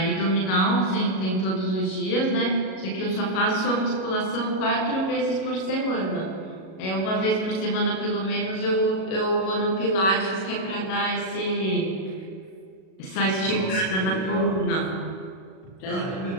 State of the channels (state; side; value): late; right; 37 ms